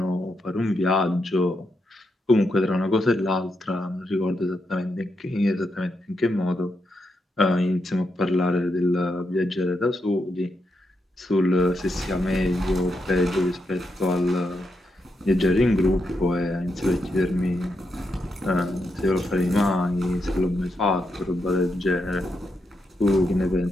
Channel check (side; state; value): both; normal; correlation 0.83